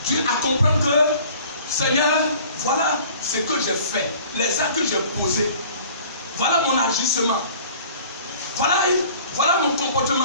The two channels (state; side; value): inverted; both; correlation -0.49